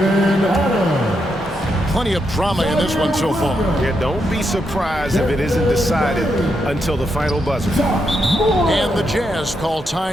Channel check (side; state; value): both; normal; correlation 0.82